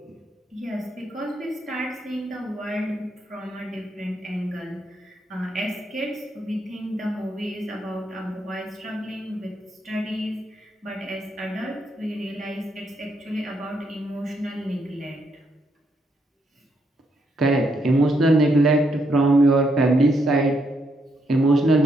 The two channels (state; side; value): normal; both; correlation 0.77